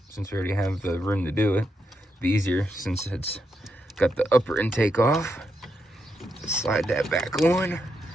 since we already have the room to do it, be easier since it's got the upper intake off. Just slide that back on.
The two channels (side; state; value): both; normal; correlation 0.82